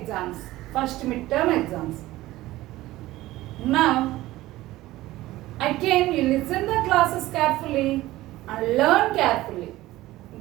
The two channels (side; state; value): left; quieter; 16.9 dB